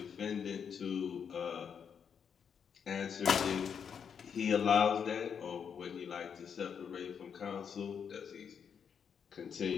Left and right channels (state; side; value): quieter; right; 7.2 dB